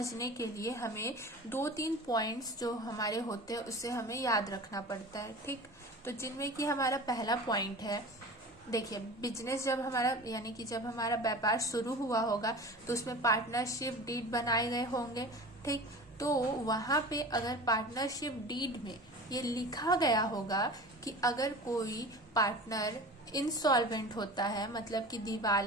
के लिए हमें 2-3 पॉइंट्स जो हमारे होते हैं उसे हमें याद रखना पड़ता है। ठीक, तो जिनमें कि हमारा पहला पॉइंट है देखिए, बिजनेस जब हमारा यानी कि जब हमारा व्यापार शुरू हुआ होगा तो उसमें पार्टनरशिप डीड बनाए गए होंगे, ठीक। तो वहां पे अगर पार्टनरशिप डीड में ये लिखा गया होगा कि अगर कोई पार्टनर इंसॉल्वेंट होता है, मतलब कि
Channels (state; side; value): normal; both; correlation 0.36